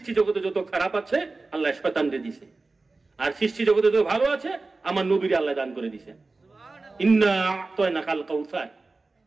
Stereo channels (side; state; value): left; quieter; 3.6 dB